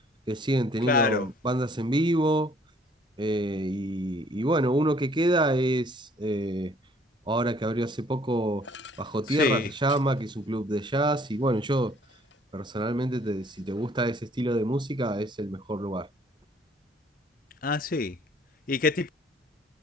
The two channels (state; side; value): normal; both; correlation 0.60